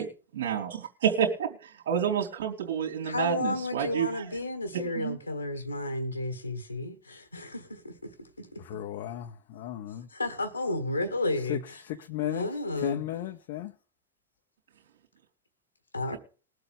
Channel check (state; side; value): inverted; both; correlation -0.44